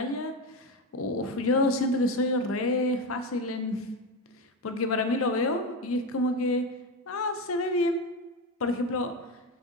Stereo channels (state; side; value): normal; both; correlation 0.17